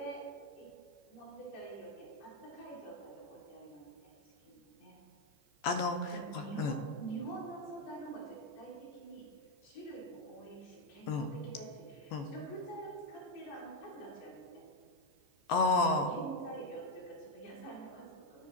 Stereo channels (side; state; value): right; late; 14 ms